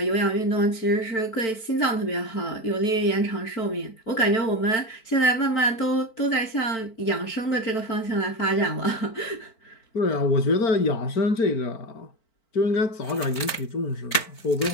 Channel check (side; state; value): right; late; 4.5 ms